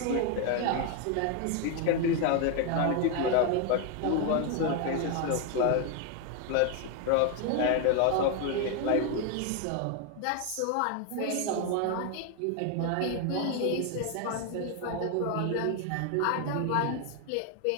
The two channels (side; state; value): both; different; correlation 0.01